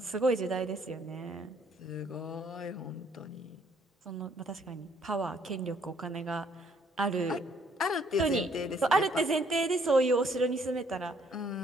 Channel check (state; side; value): normal; both; correlation 0.65